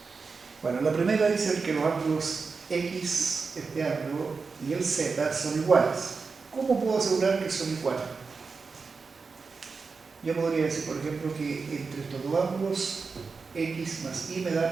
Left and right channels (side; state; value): left; quieter; 4.7 dB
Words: Bueno, la primera dice que los ángulos X, este ángulo, y el Z son iguales. ¿Cómo puedo asegurar que son iguales? Yo podría decir, por ejemplo, que entre estos dos ángulos, X más Y me da